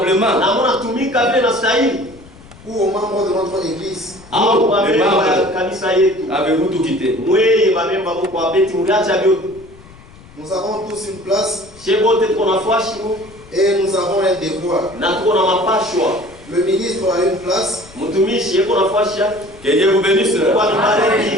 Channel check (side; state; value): left; noise; rumble, 22 dB below the sound